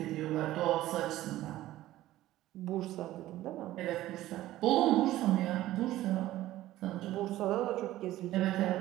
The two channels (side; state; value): left; quieter; 15.2 dB